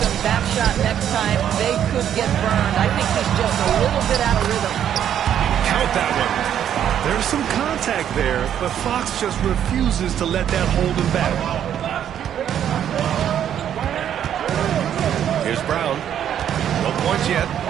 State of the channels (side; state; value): left; quieter; 9.8 dB